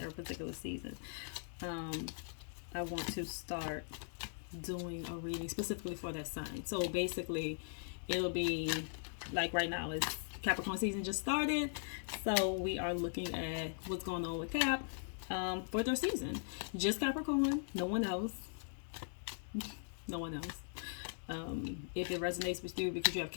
every particular season. Um, I want to start doing a reading specifically for that sign. So basically, it'll be like right now, it's Capricorn season just started. So we are looking at what's going on with Cap for their season. Just Capricorn, no one else. No one else. If it resonates with you because you have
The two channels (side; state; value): right; silent; digital silence